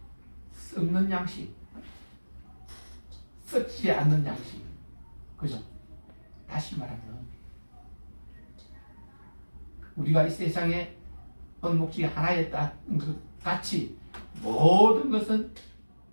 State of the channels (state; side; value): inverted; both; correlation -1.00